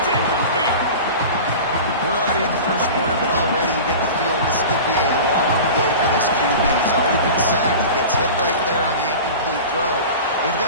incomplete. We're already in the first quarter, but already you get the feeling this could be a long day for this QB. He's already been sacked. He gets hit right there on the incomplete throw. They've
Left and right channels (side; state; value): both; inverted; correlation -0.34